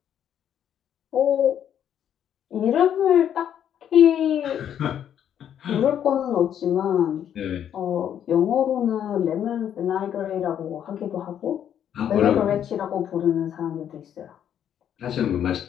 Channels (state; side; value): quieter; right; 9.6 dB